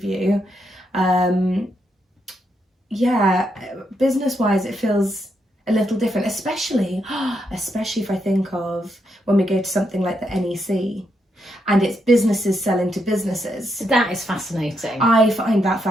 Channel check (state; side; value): normal; both; correlation 0.80